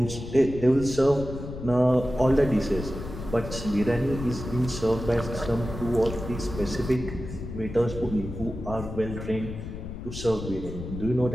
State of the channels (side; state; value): left; noise; rumble, 9 dB below the sound